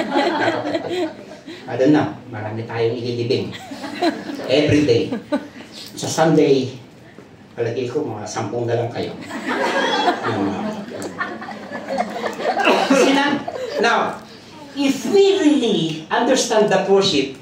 I don't know, marami tayong ililibing. Every day. Sa Sunday, palagay ko, mga 10 na lang kayo. Now, if we really understand the worship,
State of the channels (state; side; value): identical; both; correlation 1.00